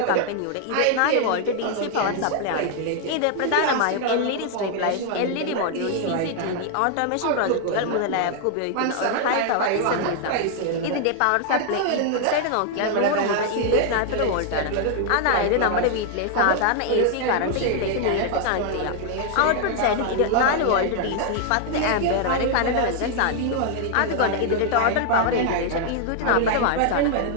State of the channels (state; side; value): different; both; correlation 0.00